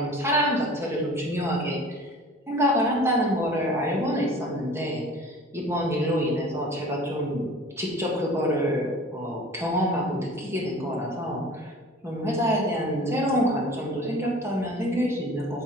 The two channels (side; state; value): both; normal; correlation 0.44